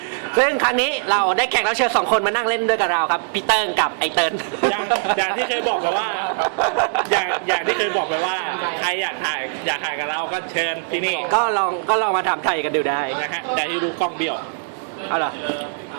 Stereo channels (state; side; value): silent; left; digital silence